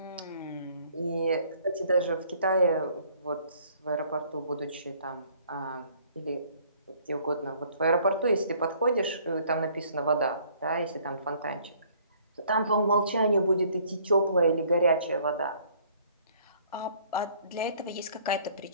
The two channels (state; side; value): inverted; both; correlation -0.59